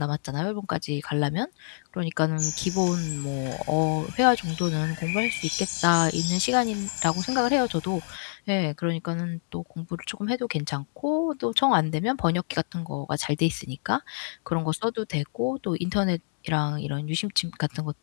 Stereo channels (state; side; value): silent; right; digital silence